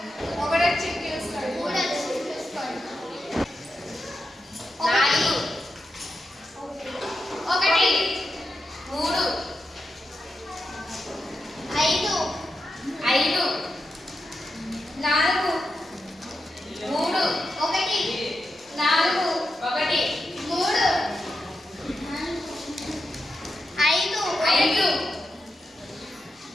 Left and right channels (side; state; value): both; normal; correlation 0.88